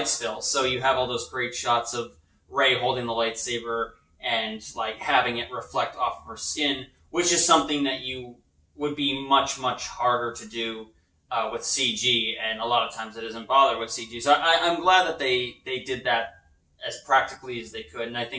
spill. So you have all those great shots of Rey holding the lightsaber and like having it reflect off of her skin, which is something that you would be much, much harder to do with CG, and a lot of times it isn't bothered with CG. So I'm glad that they did that as practically as they could, and I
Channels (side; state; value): both; identical; correlation 1.00